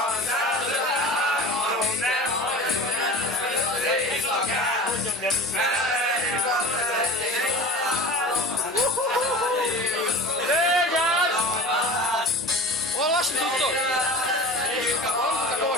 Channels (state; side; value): normal; both; correlation 0.36